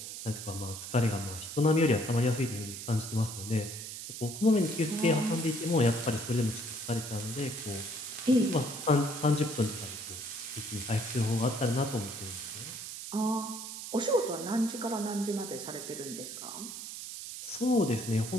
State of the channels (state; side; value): noise; right; hiss, 9 dB below the sound